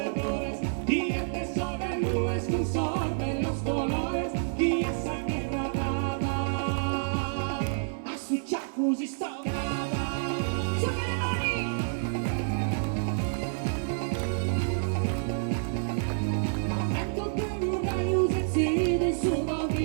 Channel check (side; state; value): left; silent; 59 dB below the other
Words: Y este sol de nubes consorben los colores, y esa guerra dada a su chafus y stocada. Su che le mani!